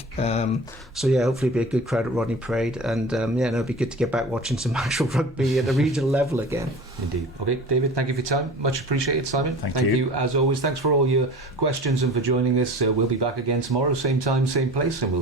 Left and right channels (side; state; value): both; normal; correlation 0.38